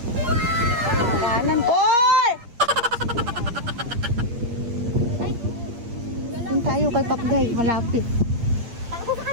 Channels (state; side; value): late; left; 8.5 ms